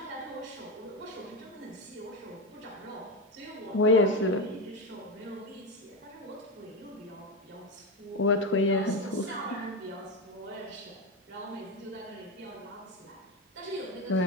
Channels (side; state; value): both; normal; correlation 0.15